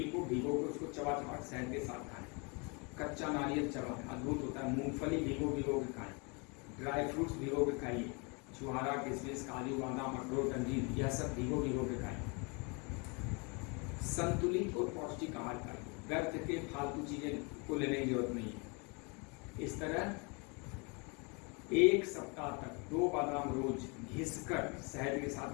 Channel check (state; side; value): quieter; right; 32.0 dB